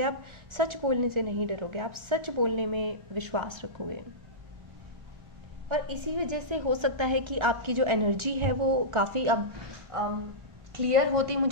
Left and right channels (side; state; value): left; late; 1.4 ms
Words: आप सच बोलने से नहीं डरोगे, आप सच बोलने में विश्वास रखोगे, और इसी वजह से हो सकता है कि आपकी जो एनर्जी है वो काफ़ी अब क्लियर होती